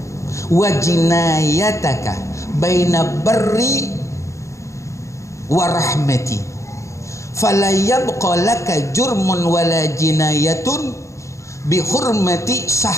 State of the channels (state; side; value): late; right; 0.15 ms